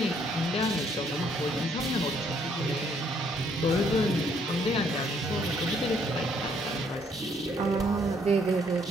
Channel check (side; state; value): both; normal; correlation 0.67